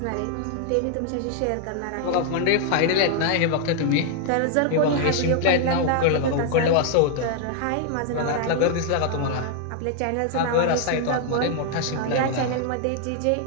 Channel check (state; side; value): different; both; correlation 0.00